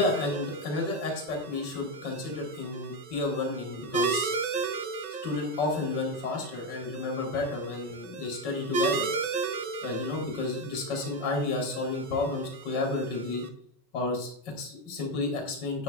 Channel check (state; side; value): late; right; 5.3 ms